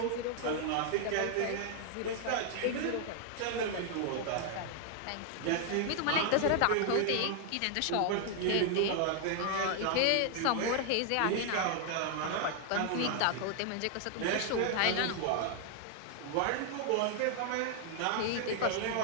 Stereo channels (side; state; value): both; different; correlation 0.00